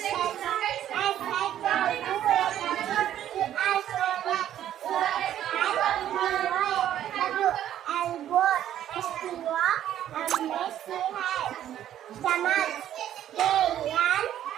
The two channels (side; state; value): left; quieter; 11.4 dB